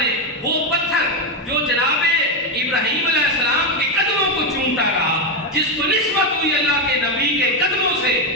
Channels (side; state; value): both; normal; correlation 0.07